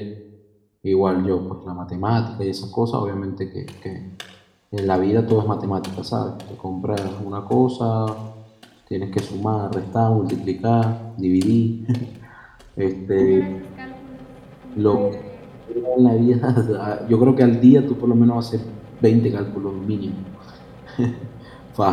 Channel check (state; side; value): identical; both; correlation 1.00